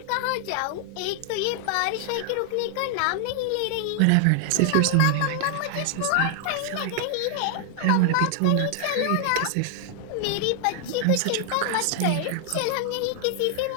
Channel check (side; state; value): both; different; correlation 0.00